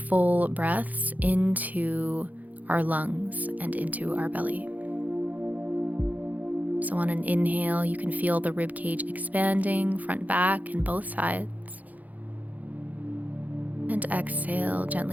breaths into our lungs and into our belly. So on an inhale, you can feel the rib cage expanding, front, back, and both sides. And exhale,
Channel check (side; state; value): left; late; 0.079 ms